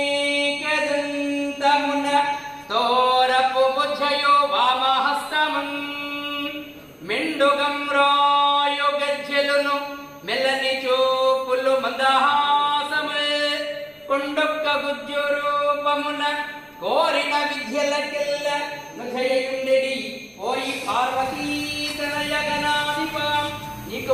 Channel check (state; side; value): identical; both; correlation 1.00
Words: కదంతమున తోరపు బుజ్జయో వామహస్తమం మెండుగం రాయు గజ్జెలును మెల్లని చూపులు మందహాసమే కొండొక్క గుజ్జు రూపమున కోరిన విద్యలకెల్ల నుజయుండెడి ఓయి పార్వతీ తనయ గణాధిప నీకు